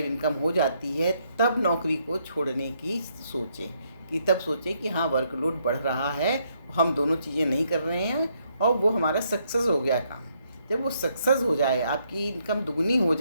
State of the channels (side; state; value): both; inverted; correlation -0.73